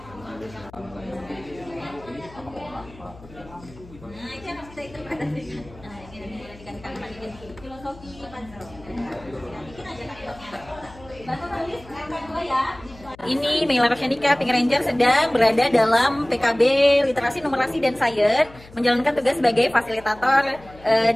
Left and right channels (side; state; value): left; noise; hum, 21 dB below the sound